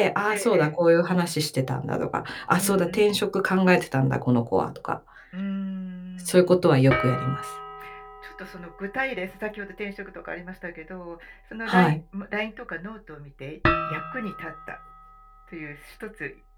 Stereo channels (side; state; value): both; identical; correlation 1.00